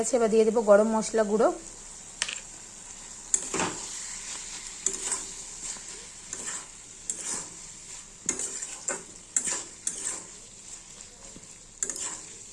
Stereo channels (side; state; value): both; identical; correlation 1.00